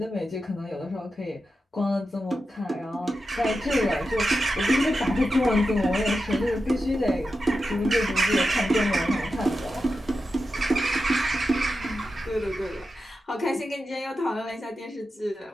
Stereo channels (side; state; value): both; normal; correlation 0.90